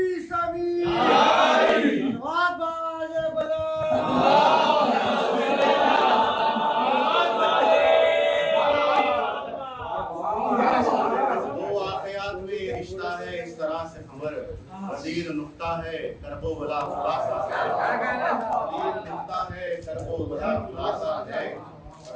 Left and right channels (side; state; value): both; identical; correlation 1.00